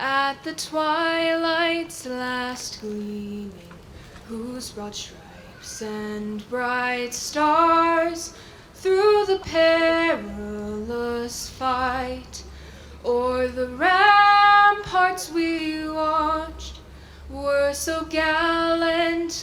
the twilight's last gleaming, whose broad stripes and bright stars through the perilous fight o'er the ramparts we watched were so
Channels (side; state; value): both; identical; correlation 1.00